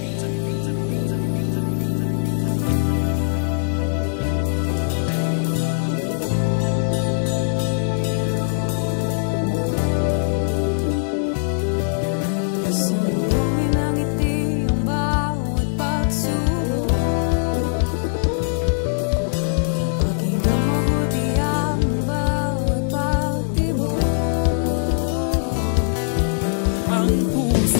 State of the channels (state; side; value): silent; right; 59 dB below the other